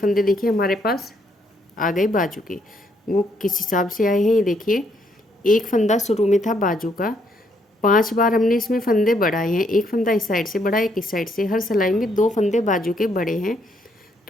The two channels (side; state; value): both; normal; correlation 0.72